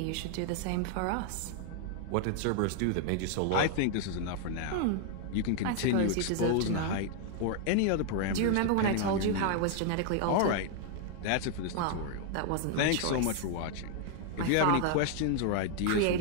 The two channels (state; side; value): different; both; correlation 0.00